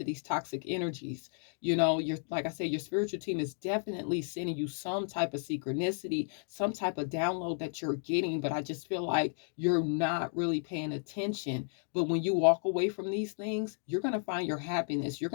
these toxic energies. Like I said, your spiritual team is definitely sending you some type of synchronicity, some type of download that you're getting, but I just feel like you're not really paying attention. But when you walk away from these things, you're going to find your happiness. You're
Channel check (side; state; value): right; silent; 56 dB below the other